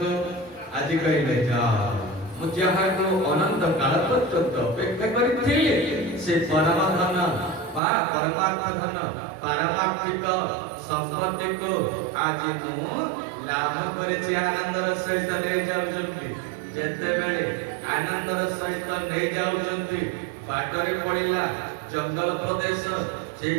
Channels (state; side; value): drops out; left; at 7.8 s